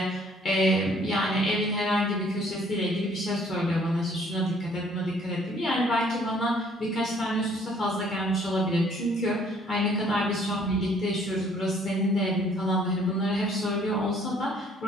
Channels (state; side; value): normal; both; correlation 0.60